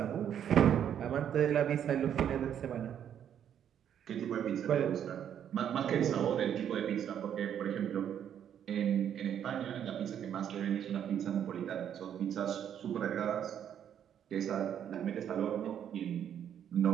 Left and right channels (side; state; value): left; quieter; 9.3 dB